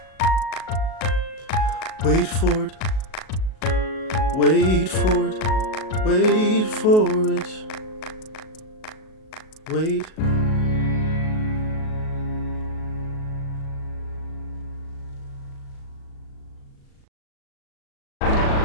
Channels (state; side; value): late; right; 37 ms